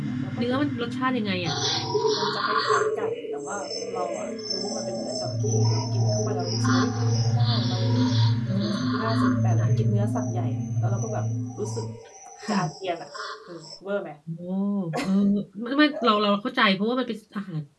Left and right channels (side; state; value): both; identical; correlation 1.00